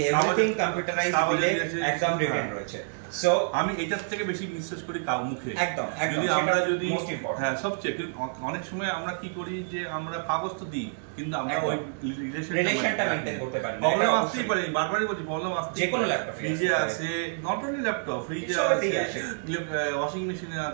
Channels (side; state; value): left; silent; digital silence